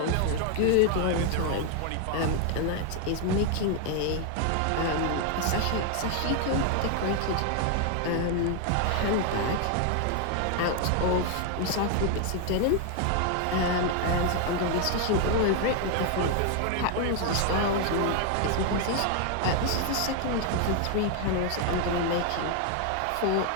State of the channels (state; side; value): different; both; correlation 0.00